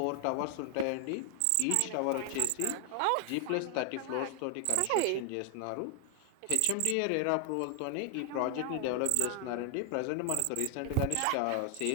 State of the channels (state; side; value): different; both; correlation 0.00